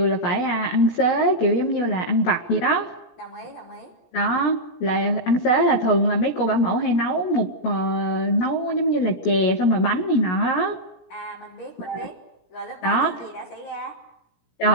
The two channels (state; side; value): late; right; 17 ms